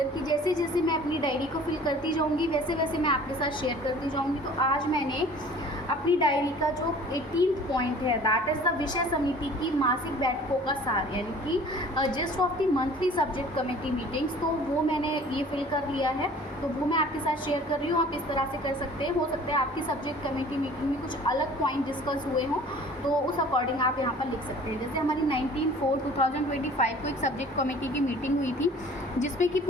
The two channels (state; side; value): normal; both; correlation 0.48